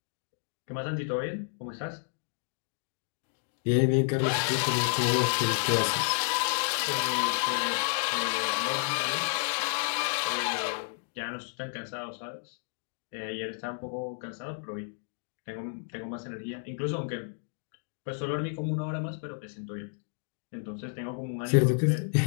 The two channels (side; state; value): right; silent; digital silence